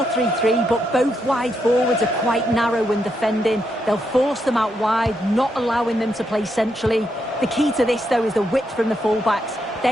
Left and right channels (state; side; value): normal; both; correlation 0.80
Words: but both wide forwards are quite narrow when defending. They'll force them out wide, not allowing them to play centrally. The key to this, though, is the width from the fullbacks.